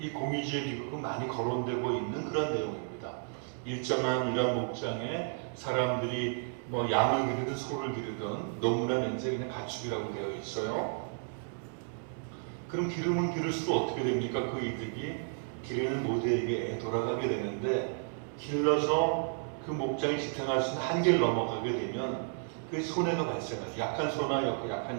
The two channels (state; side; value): silent; left; 56 dB below the other